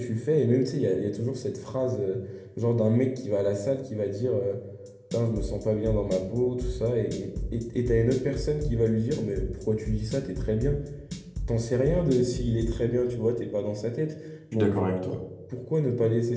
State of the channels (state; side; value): identical; both; correlation 1.00